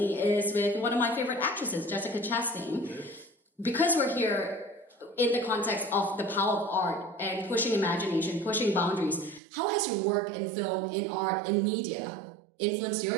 is with one of my favorite actresses, Jessica Chastain. Because we're here in the context of the power of art and pushing imagination, pushing boundaries, how has your work in film, in art, in media influenced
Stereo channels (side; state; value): left; drops out; at 9.4 s